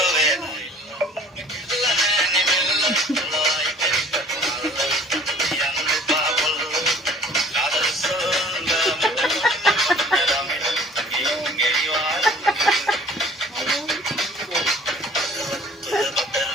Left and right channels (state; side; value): normal; both; correlation 0.50